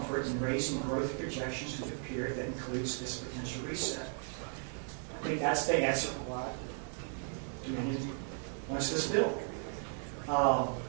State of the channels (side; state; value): left; silent; 54 dB below the other